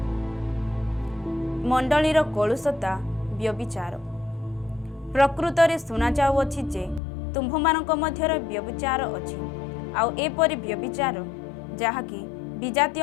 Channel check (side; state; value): right; drops out; at 7.0 s